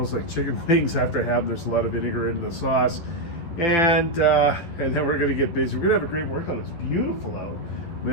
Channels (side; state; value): right; late; 12 ms